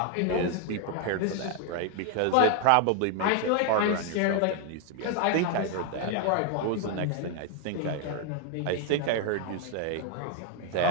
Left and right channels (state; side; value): different; both; correlation 0.01